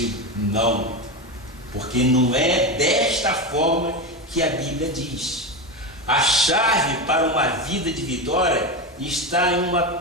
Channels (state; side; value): normal; both; correlation 0.17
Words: não, porque não é desta forma que a Bíblia diz. A chave para uma vida de vitória está em